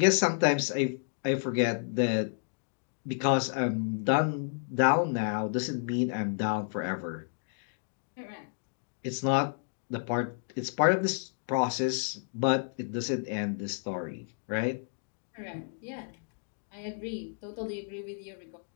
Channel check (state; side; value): silent; right; digital silence